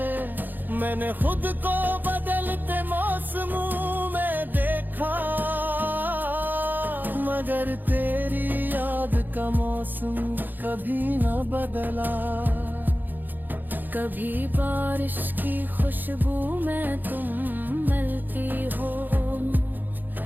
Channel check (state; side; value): late; left; 0.088 ms